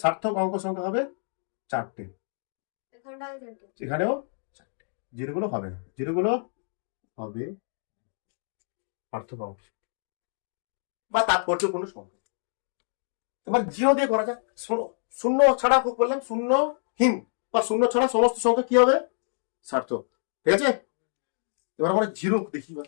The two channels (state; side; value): silent; right; digital silence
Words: সার্থক অঙ্ক সংখ্যা হবে 4টে, এখানেও 4টে। জিরোগুলো হবে না, জিরোগুলো হবে সার্থক অঙ্ক বা তাৎপর্যপূর্ণ সংখ্যা। এবার জিরো দিয়ে করা যাক। শূন্য ছাড়া খুব বললাম, শূন্যহীন বা শূন্য ছাড়া সমস্ত সংখ্যা কি হবে? সার্থক। ঠিক আছে, এবার আমরা জিরো দেখি